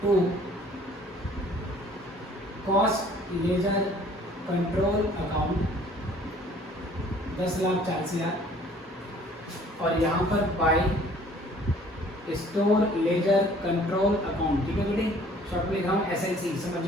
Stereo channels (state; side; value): normal; both; correlation 0.55